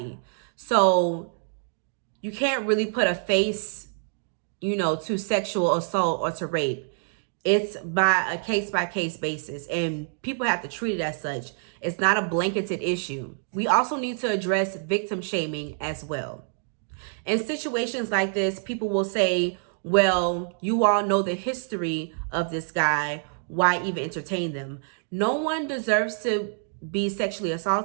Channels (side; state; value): left; silent; digital silence